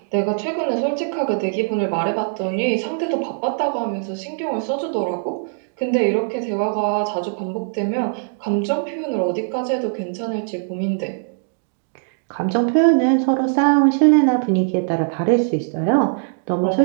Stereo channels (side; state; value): left; silent; digital silence